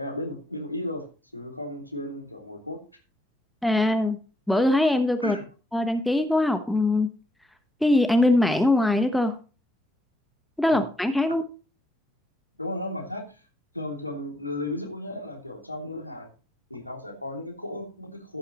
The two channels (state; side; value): normal; both; correlation 0.75